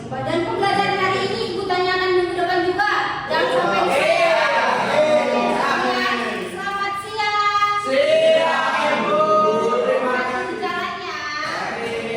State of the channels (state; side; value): identical; both; correlation 1.00